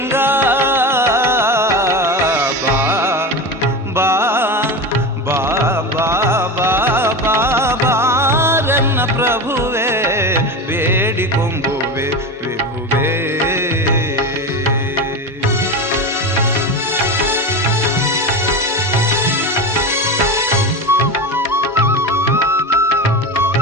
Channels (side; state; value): both; normal; correlation 0.23